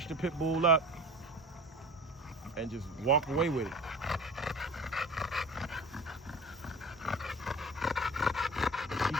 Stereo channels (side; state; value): both; normal; correlation 0.37